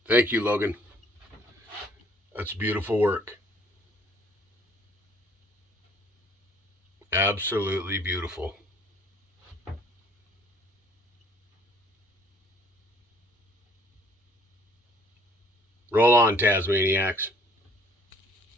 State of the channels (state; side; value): normal; both; correlation 0.59